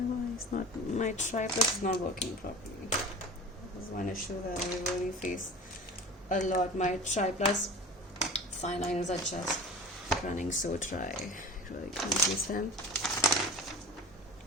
tripod is not working properly. This is one issue that I really face a lot. My tripod fine lines are just running so dry. I really can't use them.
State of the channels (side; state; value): both; normal; correlation 0.37